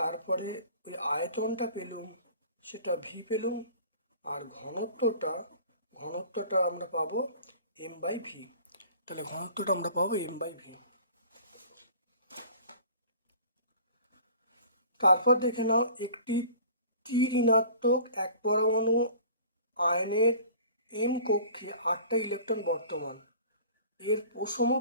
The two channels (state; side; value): inverted; both; correlation -0.46